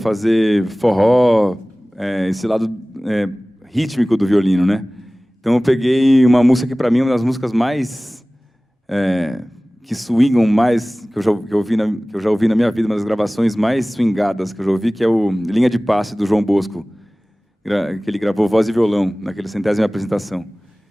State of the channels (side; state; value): both; normal; correlation 0.98